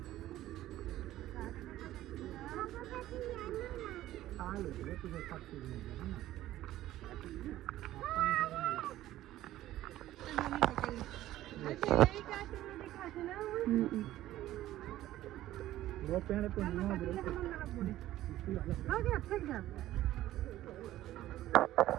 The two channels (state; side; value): quieter; left; 14.5 dB